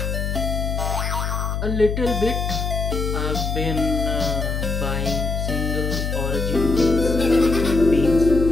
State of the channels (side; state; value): left; noise; hum, 2 dB below the sound